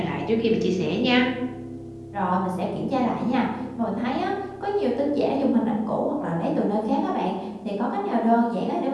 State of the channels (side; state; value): both; identical; correlation 1.00